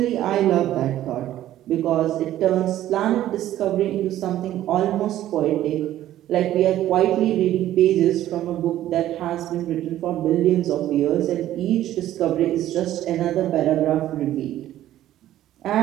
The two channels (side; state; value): left; quieter; 13.1 dB